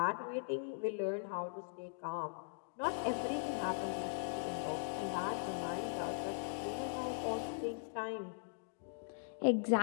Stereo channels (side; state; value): right; silent; digital silence